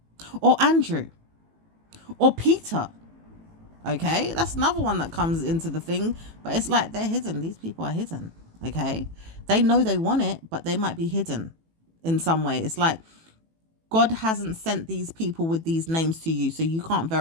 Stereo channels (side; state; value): left; late; 18 ms